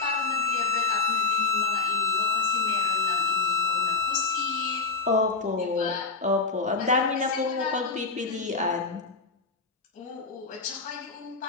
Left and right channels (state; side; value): quieter; right; 4.1 dB